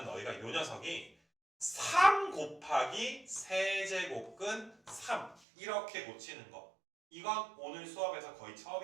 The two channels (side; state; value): left; drops out; at 5.4 s